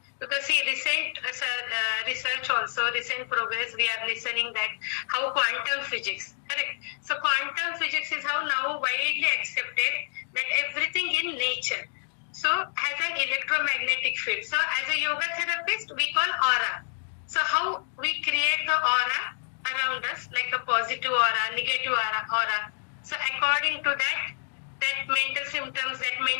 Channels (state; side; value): silent; right; digital silence